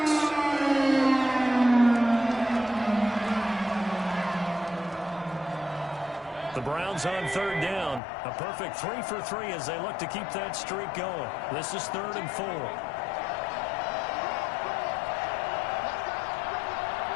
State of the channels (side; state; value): right; drops out; at 8.0 s